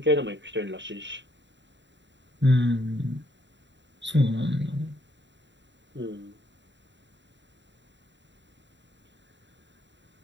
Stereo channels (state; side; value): late; left; 0.52 ms